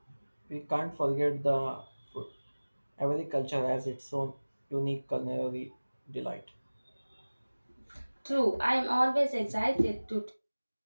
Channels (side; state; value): both; inverted; correlation -1.00